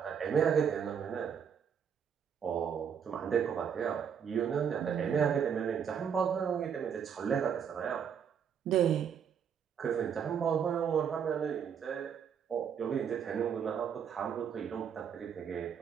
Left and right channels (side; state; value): left; quieter; 7.7 dB